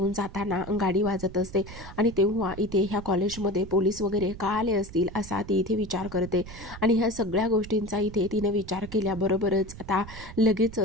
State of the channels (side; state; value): right; noise; rumble, 14 dB below the sound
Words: जाताना गाडी वाजत असते आणि तेव्हा इथे ह्या कॉलेजमध्ये पोलीस वगैरे का आले असतील असा ती इथे विचार करते. आणि ह्या सगळ्या गोष्टींचा इथे तिने विचार केल्याबरोबरच आता